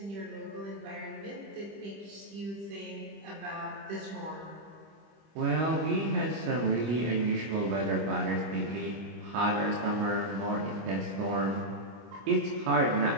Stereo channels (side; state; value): left; late; 25 ms